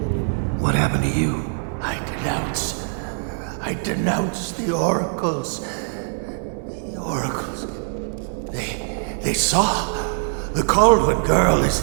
What happened to you? I denounce the oracles. The oracles. They saw. The Caldwell girl is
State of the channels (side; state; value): left; silent; digital silence